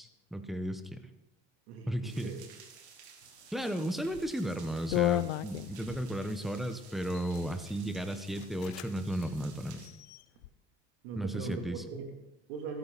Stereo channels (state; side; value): normal; both; correlation 0.65